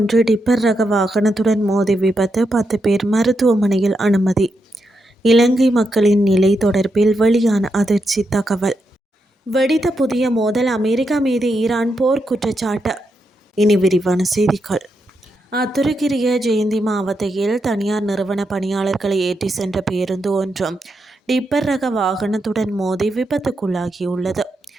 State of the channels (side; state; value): both; normal; correlation 0.84